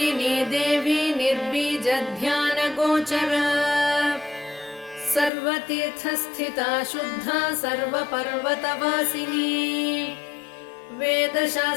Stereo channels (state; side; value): drops out; right; at 5.3 s